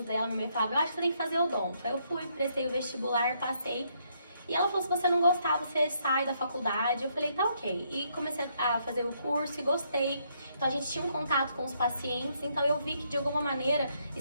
dela. Minha mãe falava, eu acho que você tem que fazer odonto. Aí eu fui, prestei o vestibular, passei. E ela falou, se você não gostar, você sai da faculdade. Eu falei, tá ok. E comecei a fazer o curso e gostei. Então a gente tinha um contato com os pacientes, então eu vi que de alguma maneira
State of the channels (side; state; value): both; inverted; correlation -0.73